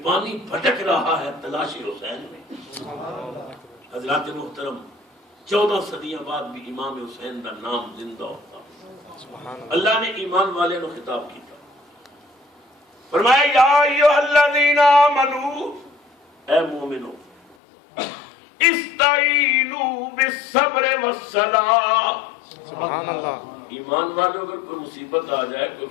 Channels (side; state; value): right; drops out; at 17.6 s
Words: پانی بھٹک رہا ہے تلاشی حسین میں۔ حضرات محترم 14 صدیاں بعد بھی امام حسین کا نام زندہ ہوتا۔ اللہ نے ایمان والے نو خطاب کیتا، فرمایا یا ایھا الذین آمنو، اے مومنو استعینوا بالصبر والصلاۃ۔ سبحان اللہ ایمان والوں اگر کوئی مصیبت آ جائے، کوئی